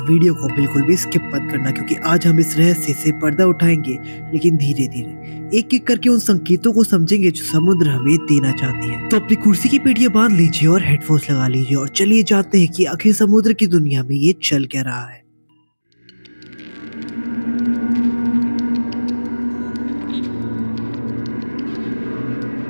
वीडियो को बिल्कुल भी स्किप मत करना, क्योंकि आज हम इस रहस्य से पर्दा उठाएंगे, लेकिन धीरे धीरे एक एक करके उन संकेतों को समझेंगे जो समुद्र हमें देना चाहती है। तो अपनी कुर्सी की पेटियां बांध लीजिए और हेडफोन्स लगा लीजिए और चलिए जानते हैं कि आखिर समुद्र की दुनिया में ये चल क्या रहा है।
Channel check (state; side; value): inverted; both; correlation -1.00